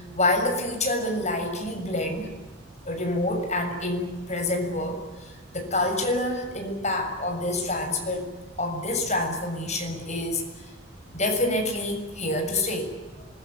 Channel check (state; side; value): normal; both; correlation 0.06